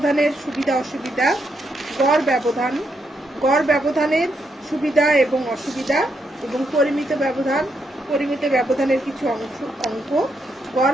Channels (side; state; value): both; normal; correlation 0.79